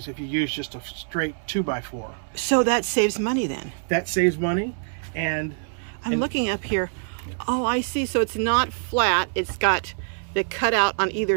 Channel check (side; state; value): left; silent; digital silence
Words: if you use just a straight 2x4. So that saves money then? That saves money. And I'm looking up here. Oh, I see. So it's not flat. It's got the cutout on either